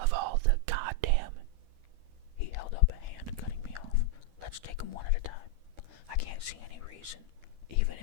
all the goddamn... He held up a hand, cutting me off. Let's take them one at a time. I can't see any reason, even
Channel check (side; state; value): left; late; 12 ms